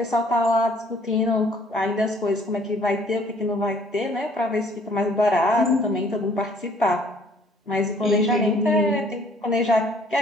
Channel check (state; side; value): normal; both; correlation 0.59